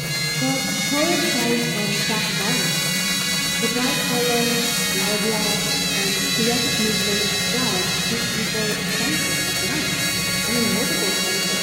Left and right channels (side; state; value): both; identical; correlation 1.00